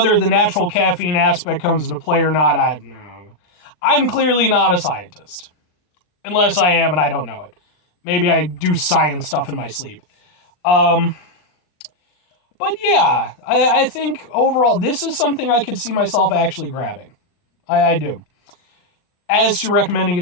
the natural caffeine aspect comes into play or not, I'm clearly not a scientist. Unless I am and I don't know it. Maybe I do science stuff in my sleep. But yeah, I think overall, this is something I could see myself actually grabbing. I do. As to recommending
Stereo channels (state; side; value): late; right; 39 ms